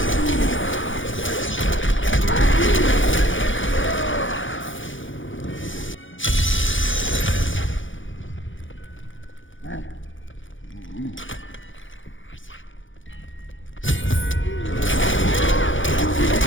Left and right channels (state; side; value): late; right; 0.56 ms